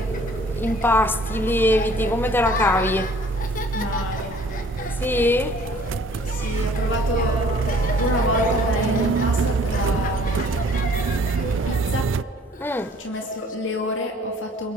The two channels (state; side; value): normal; both; correlation 0.55